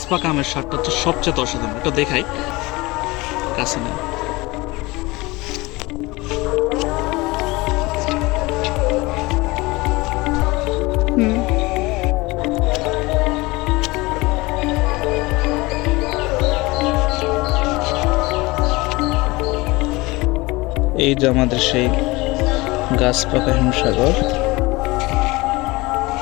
পাকা আমের স্বাদটা হচ্ছে সবচেয়ে অসাধারণ। এটা দেখাই কাছে নেই। হুম। এই যে আমাদের সেই গাছ পাকা হিমসাগর।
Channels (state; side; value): quieter; right; 22.4 dB